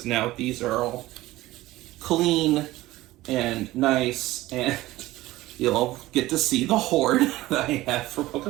now these are all clean and nice, and you'll get to see the hoard that I have for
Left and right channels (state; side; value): quieter; left; 17.3 dB